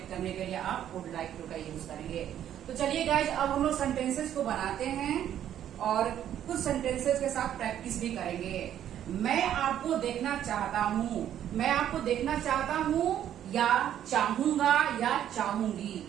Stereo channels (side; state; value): left; quieter; 10.7 dB